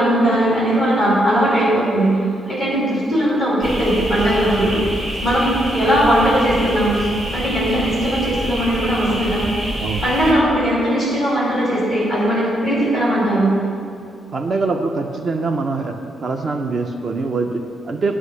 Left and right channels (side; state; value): both; normal; correlation 0.76